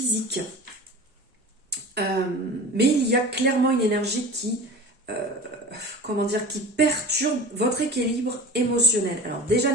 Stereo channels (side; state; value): both; normal; correlation 0.35